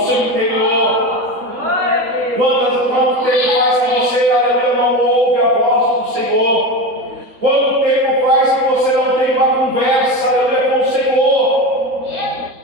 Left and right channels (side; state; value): left; late; 3.6 ms